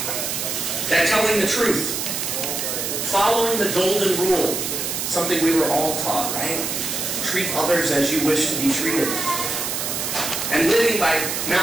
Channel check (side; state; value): right; noise; hiss, 2 dB below the sound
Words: That telling the truth, following the golden rule, something we were all taught, right? Treat others as you wish to be treated. And living by